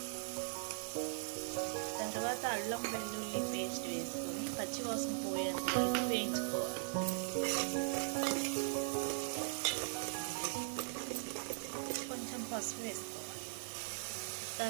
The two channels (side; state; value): left; silent; digital silence